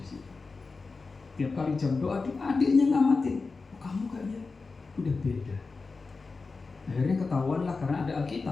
situ. Tiap kali jam doa, adiknya ngamatin. Oh, kamu kayaknya udah beda. Akhirnya ketahuan lah karena ada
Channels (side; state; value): right; quieter; 4.2 dB